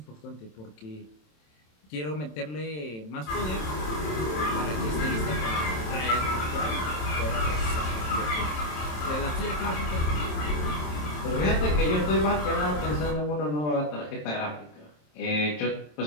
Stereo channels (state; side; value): late; right; 27 ms